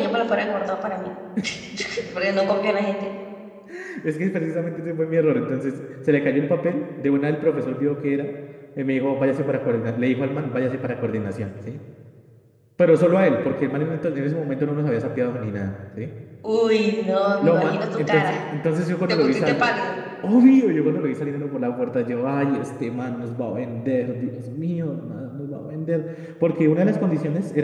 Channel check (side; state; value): both; identical; correlation 1.00